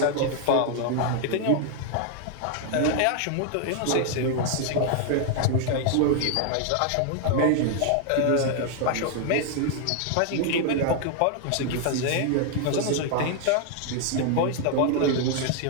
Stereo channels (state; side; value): different; both; correlation 0.00